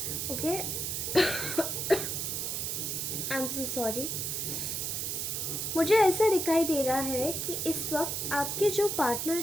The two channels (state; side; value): noise; right; hiss, 2 dB below the sound